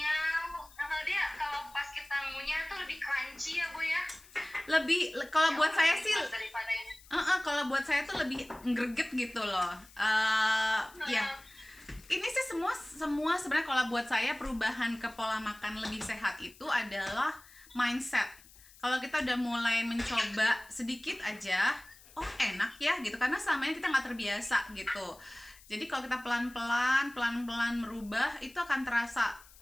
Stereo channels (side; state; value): left; noise; hiss, 23 dB below the sound